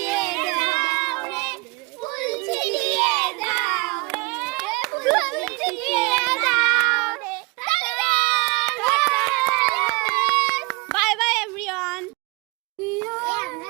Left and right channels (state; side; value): quieter; left; 26.4 dB